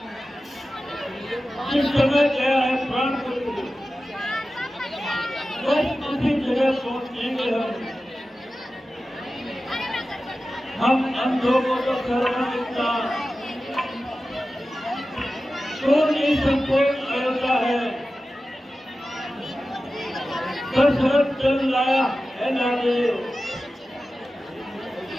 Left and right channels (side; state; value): both; normal; correlation 0.94